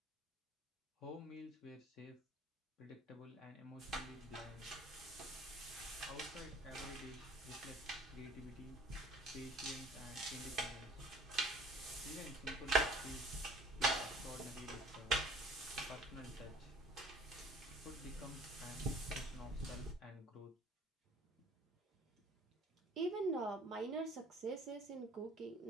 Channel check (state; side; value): normal; both; correlation 0.50